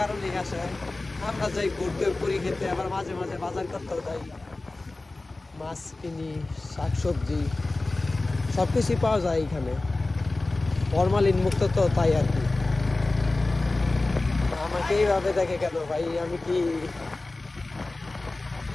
আসে। আমরা যাই ঘুরতে, পুরি খেতে, আবার মাঝে মাঝে বাজার করতেও যাই, মাছ কিনি, শাকসবজি সব কিছুই পাওয়া যায় এখানে, ফরমালিন মুক্ত তো, তাই আর কি। আমাকে এইভাবে দেখে কেন ভাই? আমি কি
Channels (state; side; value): quieter; right; 3.1 dB